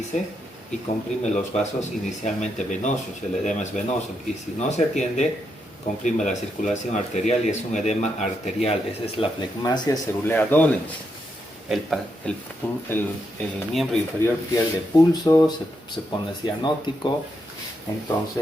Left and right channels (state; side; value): normal; both; correlation 0.81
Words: y comprime los vasos inicialmente venosos, el edema es venoso, y si no se atiende, comprime la circulación arterial y es un edema arterial. Esa es la flegmasia cerulea dolens. El miembro inferior pierde pulso, se pone cianótico,